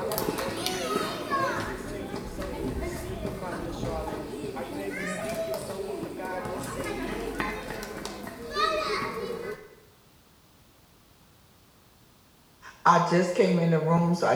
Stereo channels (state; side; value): identical; both; correlation 1.00